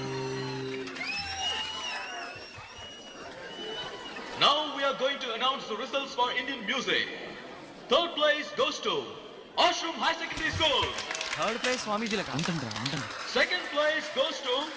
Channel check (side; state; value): both; identical; correlation 1.00